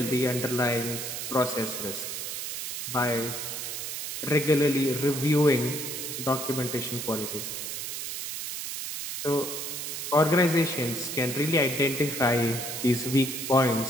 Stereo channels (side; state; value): right; noise; hiss, 5 dB below the sound